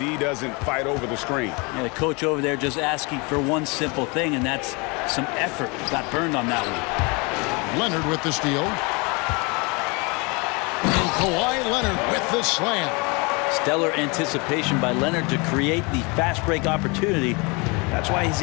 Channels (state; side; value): quieter; right; 29.2 dB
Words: doesn't fight over the screen. Yeah, the coach over there just asking for one simple thing, and that's some effort. Got burned on that one. Leonard with the steal. And Kawhi Leonard with the slam. Stellar anticipation by Leonard to create the fast break opportunity. That's why he's